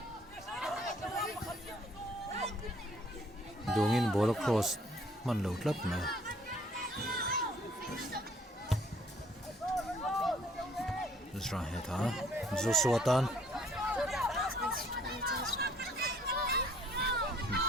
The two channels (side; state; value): both; normal; correlation 0.60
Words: dungin ball cross man lo tlap na Ezra head ha Joshua tan